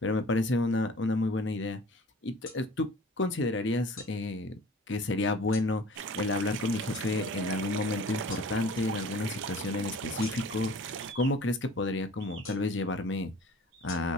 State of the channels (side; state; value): both; normal; correlation 0.46